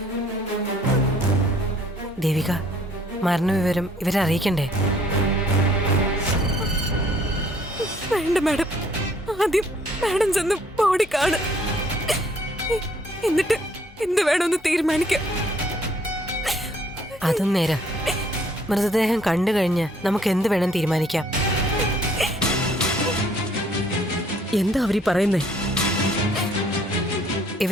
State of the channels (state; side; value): normal; both; correlation 0.62